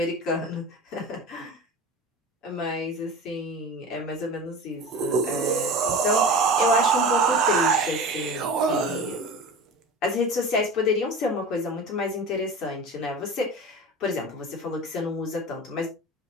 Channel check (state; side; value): normal; both; correlation 0.32